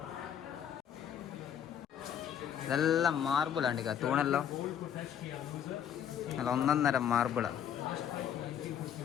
ഇതെല്ലാം മാർബിളാണ് തൂണെല്ലാം നല്ല ഒന്നൊന്നര മാർബിളാണ്.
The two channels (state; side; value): quieter; right; 9.2 dB